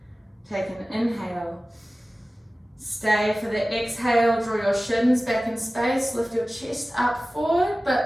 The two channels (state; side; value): normal; both; correlation 0.97